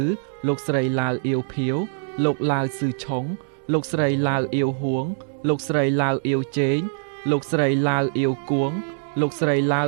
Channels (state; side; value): silent; left; digital silence